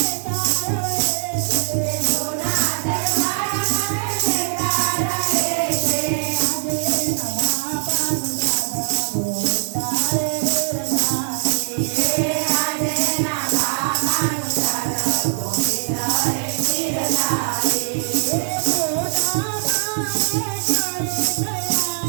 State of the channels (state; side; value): silent; left; 65 dB below the other